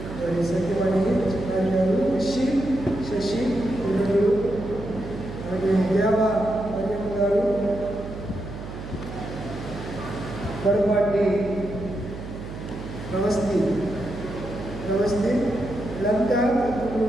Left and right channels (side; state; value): right; noise; hum, 10 dB below the sound